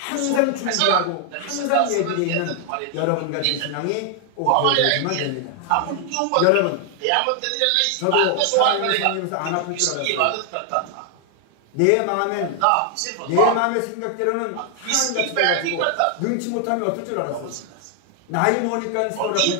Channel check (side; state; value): both; different; correlation 0.00